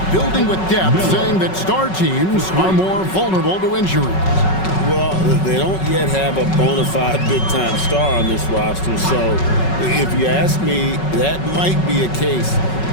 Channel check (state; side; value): late; right; 5.4 ms